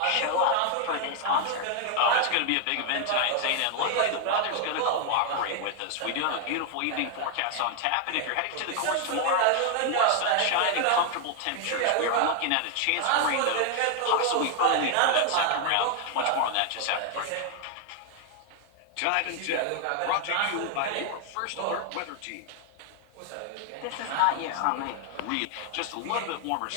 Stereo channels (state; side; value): different; both; correlation 0.00